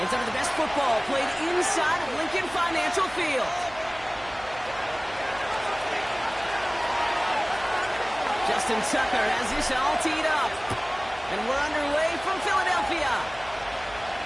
some of the best football played inside of Lincoln Financial Field. Justin Tucker has this all teed up. And we're underway from Philadelphia.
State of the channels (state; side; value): noise; right; hum, 21 dB below the sound